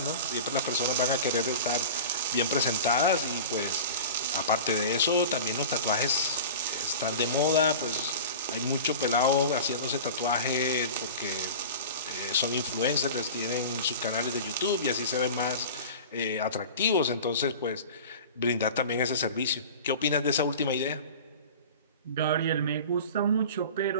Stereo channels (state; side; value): inverted; both; correlation -0.35